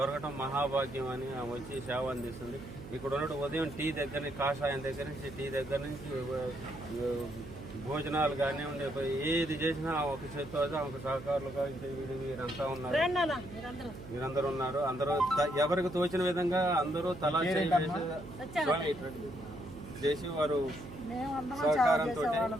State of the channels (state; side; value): noise; right; hum, 14 dB below the sound